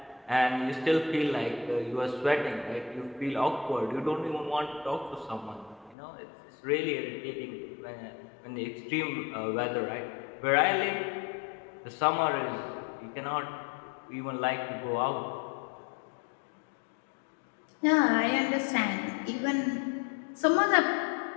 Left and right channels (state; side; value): drops out; right; at 6.0 s